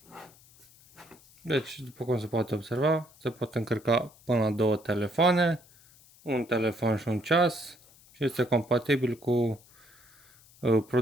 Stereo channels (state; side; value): noise; left; hiss, 27 dB below the sound